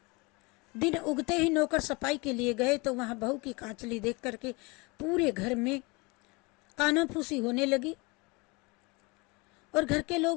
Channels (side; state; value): right; quieter; 26.9 dB